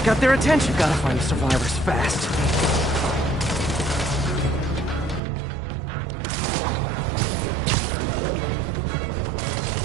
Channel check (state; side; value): drops out; left; at 5.2 s